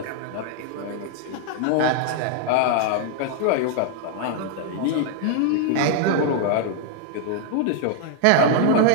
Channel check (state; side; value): different; both; correlation 0.00